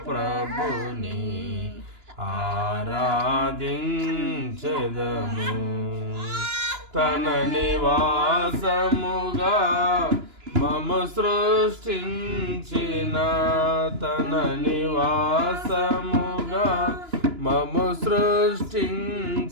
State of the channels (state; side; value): late; left; 2.9 ms